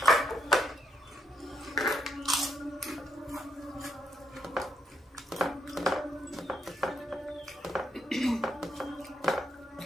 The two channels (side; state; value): both; normal; correlation 0.76